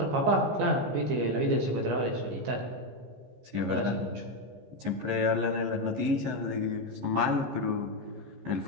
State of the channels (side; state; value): left; late; 15 ms